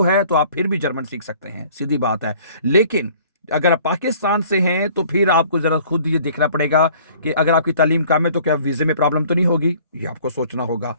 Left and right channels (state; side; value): inverted; both; correlation -0.53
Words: है तो आप फिर भी जर्मन सीख सकते हैं, सीधी बात है। लेकिन अगर आप पाकिस्तान से हैं तो फिर आपको जरा खुद ये देखना पड़ेगा कि अगर आपकी तालीम कम है तो क्या वीजे में प्रॉब्लम तो नहीं होगी, ये आपको सोचना होगा।